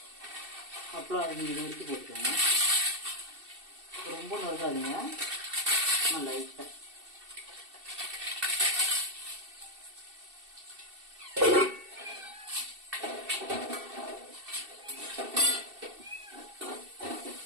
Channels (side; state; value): left; late; 2.7 ms